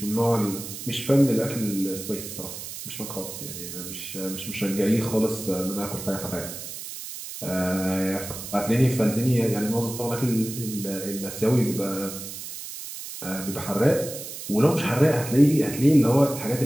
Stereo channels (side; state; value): right; noise; hiss, 10 dB below the sound